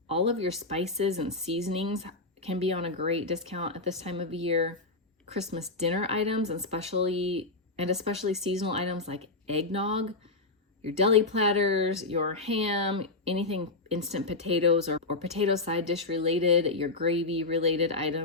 All of your spices and seasonings can be on a great discount at this time of year. Christmas dinner items, and especially seasonal items like eggnog, your deli platters, your ham, anything instant potatoes or potato side dish related, your gravy related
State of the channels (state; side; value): quieter; right; 3.3 dB